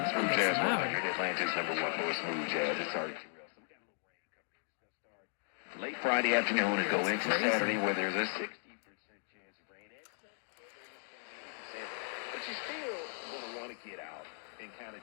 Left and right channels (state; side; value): silent; right; 53 dB below the other